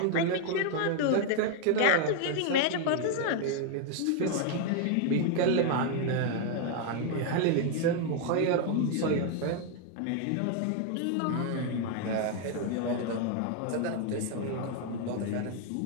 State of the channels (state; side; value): different; both; correlation 0.00